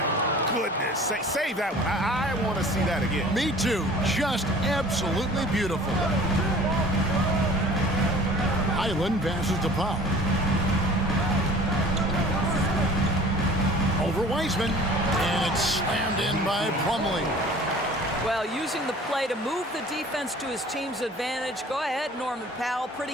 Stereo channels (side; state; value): both; normal; correlation 0.47